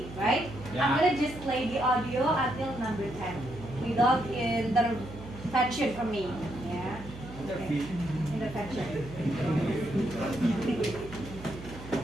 right? I'm gonna just play the audio until number 10 without intervention from me. Yeah. Okay. Intervention.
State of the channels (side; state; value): right; noise; hum, 14 dB below the sound